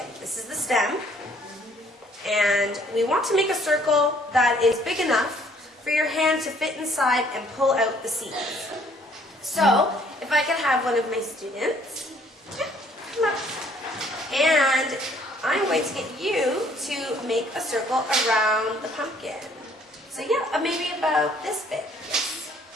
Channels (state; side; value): normal; both; correlation 0.61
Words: This is the stem, and we want to make a circle that is big enough for your hand to fit inside and pull out the seeds. So, if I could have one of my students, come up, and I'm going to get you to make a circle around the pumpkin. So yeah, maybe about this big.